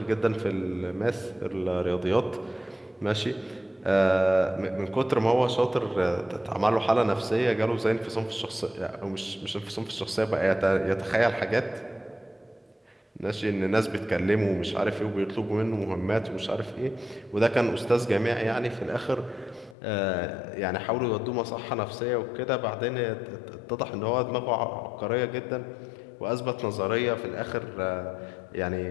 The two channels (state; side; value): drops out; right; at 19.8 s